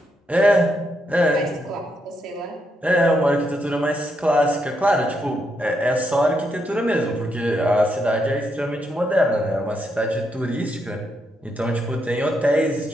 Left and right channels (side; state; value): both; normal; correlation 0.79